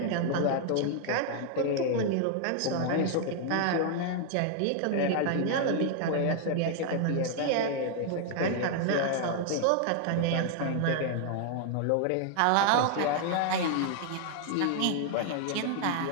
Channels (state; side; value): different; both; correlation 0.00